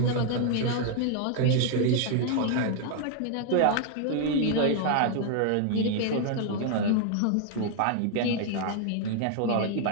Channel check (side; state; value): both; different; correlation 0.00